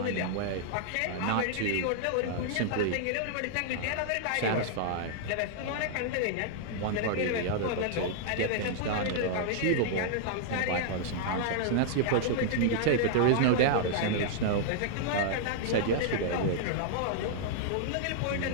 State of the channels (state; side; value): different; both; correlation -0.01